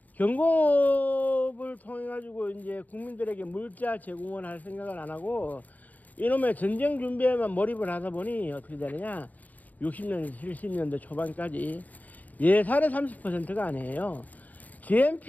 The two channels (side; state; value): right; late; 0.078 ms